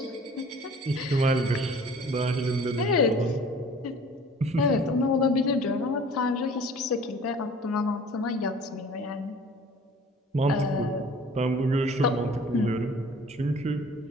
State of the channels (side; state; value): both; normal; correlation 0.48